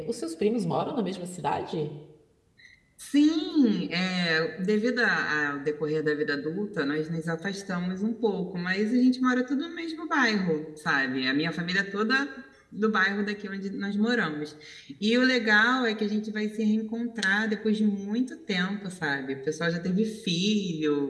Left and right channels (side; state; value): both; identical; correlation 1.00